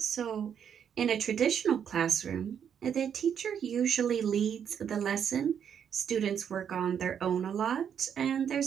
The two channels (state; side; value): quieter; left; 8.2 dB